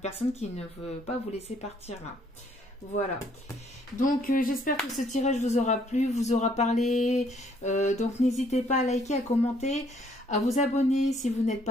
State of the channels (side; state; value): both; normal; correlation 0.65